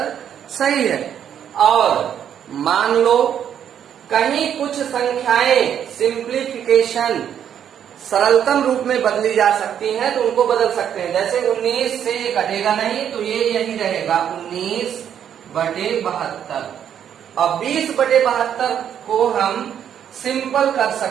सही है। और मान लो कहीं कुछ संख्याएं सिंप्लीफिकेशन सरलतम रूप में बदली जा सकती हैं, तो उनको बदल सकते हैं। जैसे 19 से ये कटेगा नहीं, तो ये यही रहेगा 19 बटे 72। अब 20 बटे 72 को हम सिंपल कर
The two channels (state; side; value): quieter; left; 9.2 dB